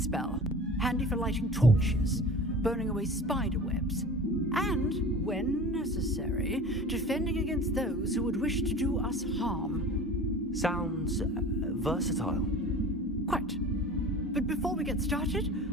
handy for lighting torches, burning away spider webs, and, when necessary, defending against those who would wish to do us harm. Sounds versatile. Quite. But before we get started,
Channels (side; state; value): both; normal; correlation 0.39